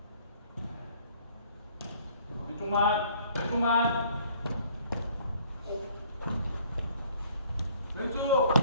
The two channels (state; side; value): inverted; both; correlation -0.58